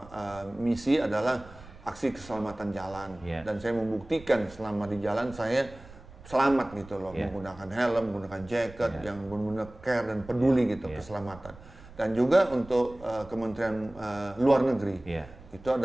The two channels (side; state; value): right; noise; rumble, 19 dB below the sound